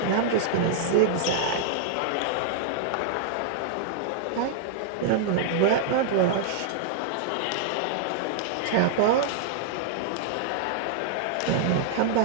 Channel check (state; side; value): different; both; correlation -0.01